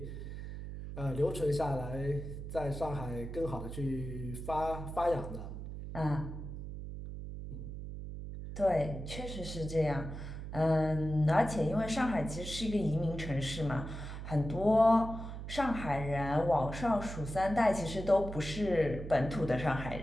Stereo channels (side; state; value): right; noise; hum, 8 dB below the sound